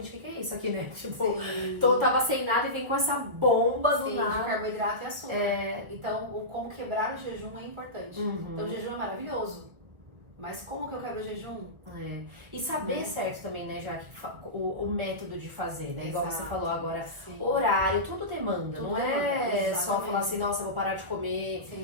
o que é isso aqui, né? Tipo, tava sem nada e vem com essa bomba do nada. De carboidrato e açúcar. Então, como quebrar o jejum é importante. Então, o jejum é maravilhoso. Mas como que eu quebro o jejum? E saber certo também, né, já que o método de fazer, né? Igual você falou agora, horário, tudo demanda. Tudo não é só falar assim, nossa, eu vou parar de comer.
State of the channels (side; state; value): left; late; 1.8 ms